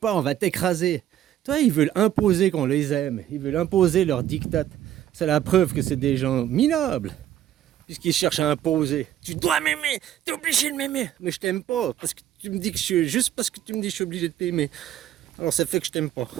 on va t'écraser. Toi, ils veulent imposer qu'on les aime, ils veulent imposer leur diktat. C'est la preuve que c'est des gens minables, puisqu'ils cherchent à imposer. Tu dois m'aimer, t'es obligé de m'aimer. Mais je t'aime pas, parce que tu me dis que juste parce que tu me dis que je suis obligé de t'aimer. Alors ça fait que je t'aime pas.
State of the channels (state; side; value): quieter; left; 11.7 dB